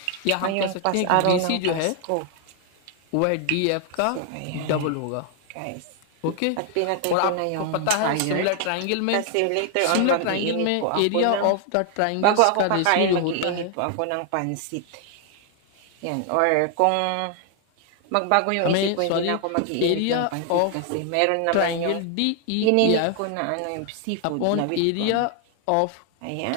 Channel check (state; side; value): different; both; correlation 0.00